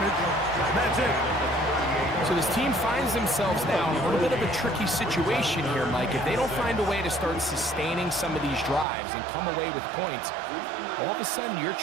And that's it. So this team finds themselves now in a little bit of a tricky situation here, Mike. If they don't find a way to start sustaining some of these drives and come away with points, all of a sudden you're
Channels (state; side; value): drops out; left; at 8.8 s